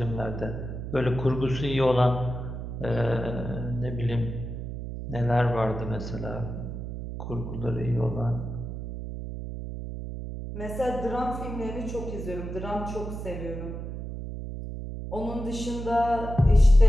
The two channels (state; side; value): noise; right; hum, 7 dB below the sound